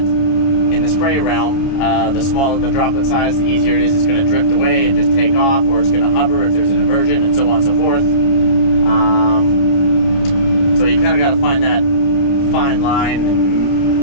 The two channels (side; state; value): right; late; 29 ms